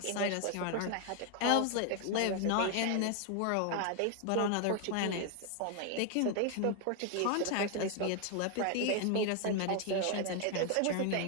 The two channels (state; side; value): different; both; correlation 0.00